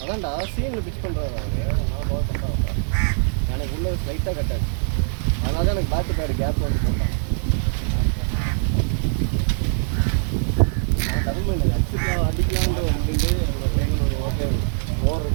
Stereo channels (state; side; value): silent; left; digital silence